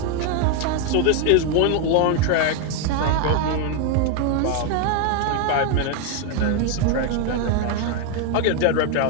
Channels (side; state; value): both; different; correlation 0.01